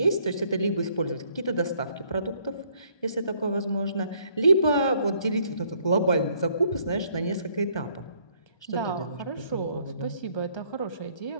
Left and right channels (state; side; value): late; right; 1.3 ms